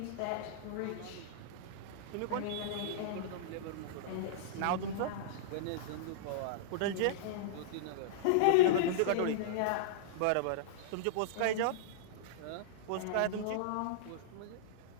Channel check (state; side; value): different; both; correlation -0.02